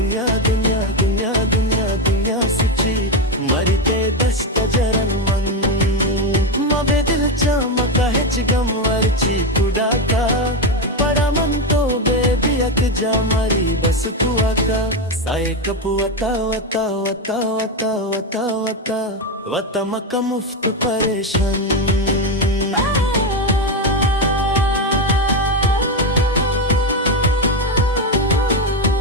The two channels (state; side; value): normal; both; correlation 0.10